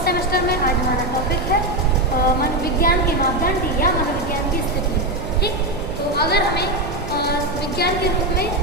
सेमेस्टर में आज हमारा टॉपिक है मनोविज्ञान के मापदंड या मनोविज्ञान की स्थिति। ठीक, तो अगर हमें विज्ञान के रूप में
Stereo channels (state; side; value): noise; right; hum, 10 dB below the sound